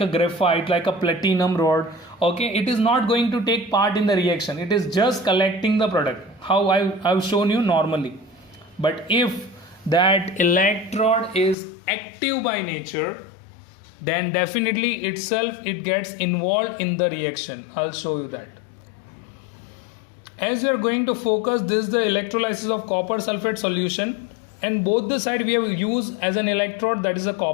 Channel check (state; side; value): drops out; right; at 11.6 s